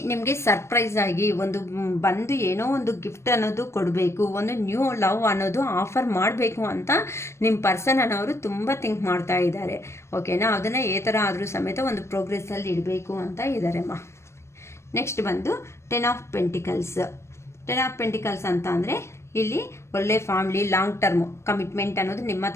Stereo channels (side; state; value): right; late; 0.13 ms